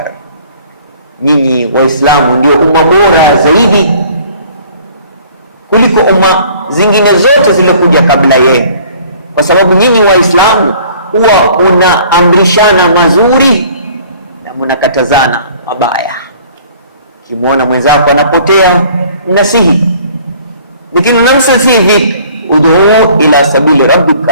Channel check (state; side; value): inverted; both; correlation -0.54